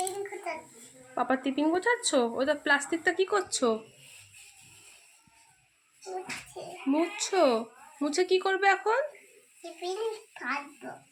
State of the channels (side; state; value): both; identical; correlation 1.00